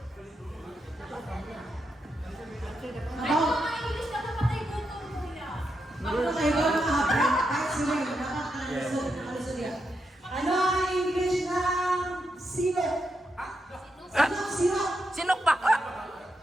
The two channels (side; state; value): both; normal; correlation 0.84